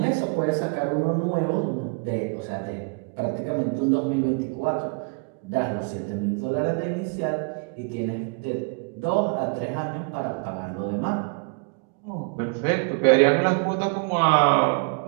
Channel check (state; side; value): quieter; left; 33.5 dB